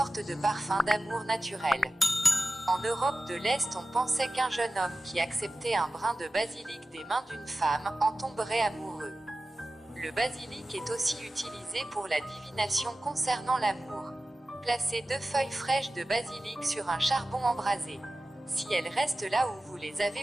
de parfum d'amour naturel. En Europe de l'Est, on pensait qu'un jeune homme qui acceptait un brin de basilic des mains d'une femme en tomberait amoureux. Le basilic est aussi utilisé pour la divination concernant l'amour. Placez 2 feuilles fraîches de basilic sur un charbon embrasé. Si elles restent là où vous les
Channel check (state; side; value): normal; both; correlation 0.95